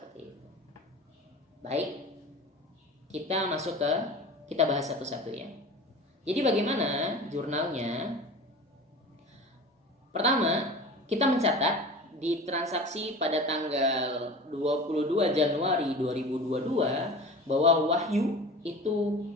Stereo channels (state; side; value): normal; both; correlation 0.36